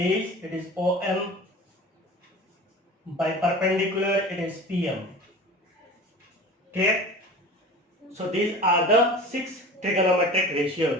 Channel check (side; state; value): both; normal; correlation 0.37